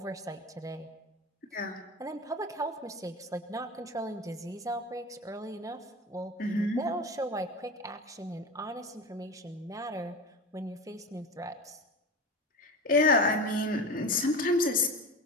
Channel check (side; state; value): both; normal; correlation 0.27